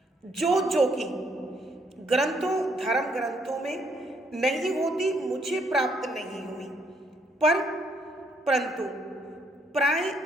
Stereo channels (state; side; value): normal; both; correlation 0.70